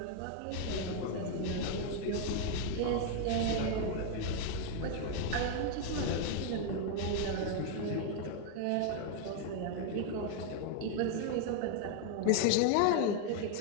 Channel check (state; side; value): different; both; correlation 0.00